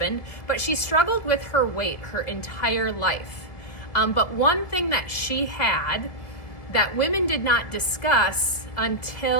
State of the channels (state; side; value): late; right; 1.7 ms